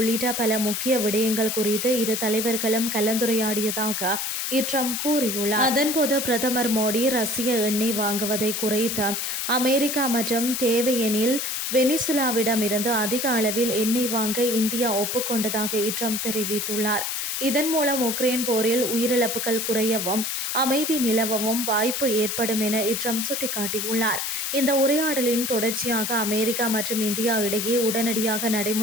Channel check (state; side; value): noise; left; hiss, 2 dB below the sound